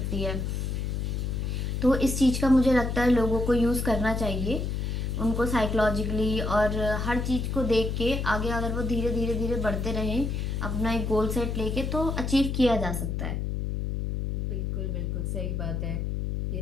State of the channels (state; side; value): noise; left; hum, 1 dB below the sound